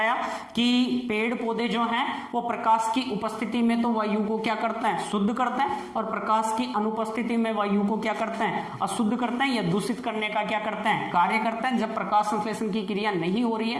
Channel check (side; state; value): both; identical; correlation 1.00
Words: कि पेड़ पौधे जो हैं वो प्रकाश की उपस्थिति में तो वायु को क्या करते हैं, शुद्ध करते हैं, और प्रकाश की अनुपस्थिति में वायु को क्या करते हैं, अशुद्ध करते हैं या दूषित करने का क्या करते हैं, कार्य करते हैं। जब प्रकाश संश्लेषण की क्रिया नहीं हो रही